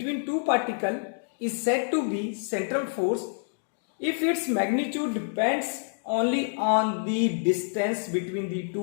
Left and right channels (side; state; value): right; silent; digital silence